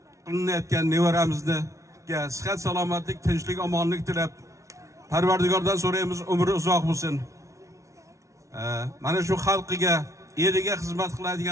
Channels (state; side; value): late; left; 0.14 ms